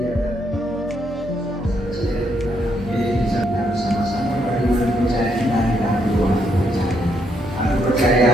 Bisa bersama-sama bagaimana percaya kita dalam ruang percaya. Aku percaya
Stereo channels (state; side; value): normal; both; correlation 0.75